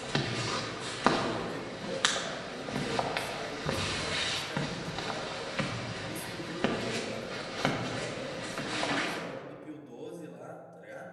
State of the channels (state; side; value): identical; both; correlation 1.00